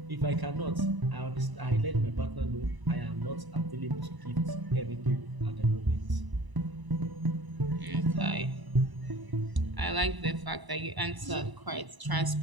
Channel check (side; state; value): left; late; 1.0 ms